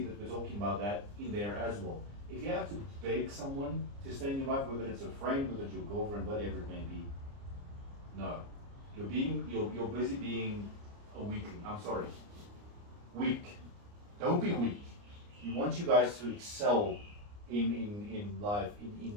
that we're talking about that in there as well. If you have to beg someone to stay in your life, whether it's a friend, whether it's your girlfriend, whatever it may be, no. You're busy being a weakling. I'm sorry. Weak. Don't be weak. We want you guys to excel in life,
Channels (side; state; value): left; late; 29 ms